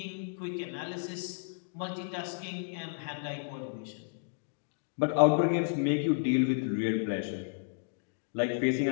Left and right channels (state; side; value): silent; right; digital silence